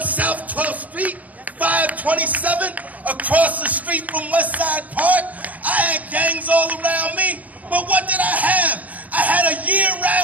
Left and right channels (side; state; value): left; late; 0.075 ms